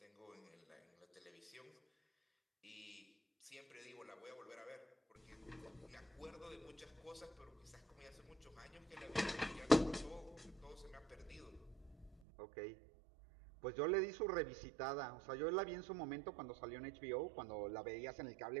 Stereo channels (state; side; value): drops out; left; at 12.2 s